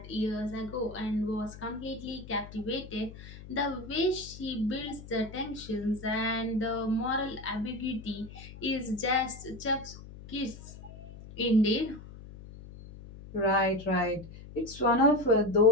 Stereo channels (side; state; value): left; noise; hum, 15 dB below the sound